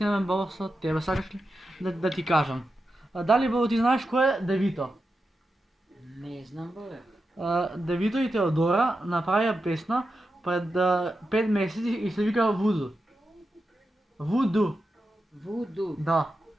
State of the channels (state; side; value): normal; both; correlation 0.89